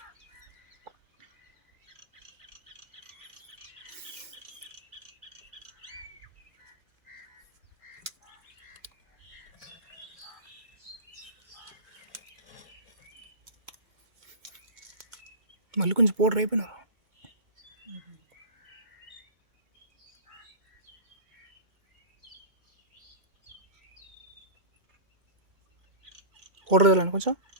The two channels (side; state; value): left; late; 2.0 ms